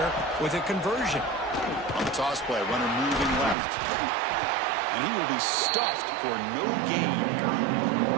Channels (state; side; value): drops out; left; at 3.6 s